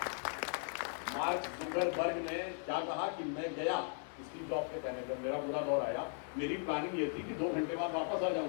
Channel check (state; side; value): silent; right; 53 dB below the other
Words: मार्क जुकरबर्ग ने क्या कहा कि मैं गया, स्टीव जॉब्स के कहने पर, मेरा बुरा दौर आया, मेरी प्लानिंग ये थी कि 2 घंटे बाद वापस आ